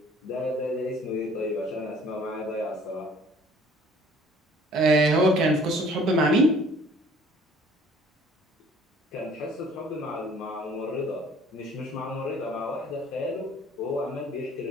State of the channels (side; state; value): both; normal; correlation 0.54